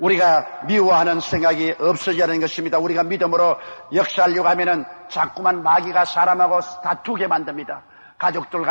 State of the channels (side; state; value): both; inverted; correlation -1.00